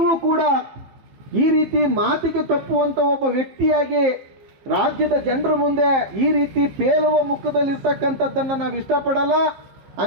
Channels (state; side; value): late; left; 15 ms